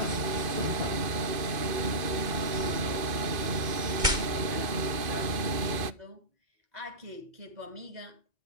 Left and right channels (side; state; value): left; late; 2.5 ms